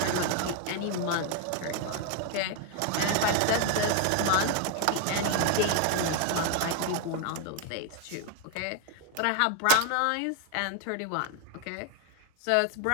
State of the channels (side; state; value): both; different; correlation 0.01